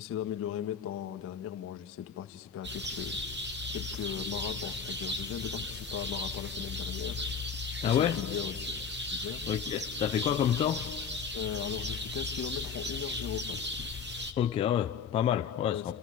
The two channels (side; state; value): right; quieter; 6.5 dB